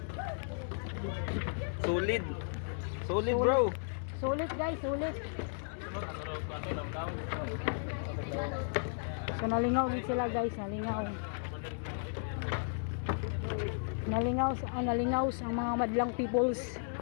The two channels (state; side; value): silent; right; digital silence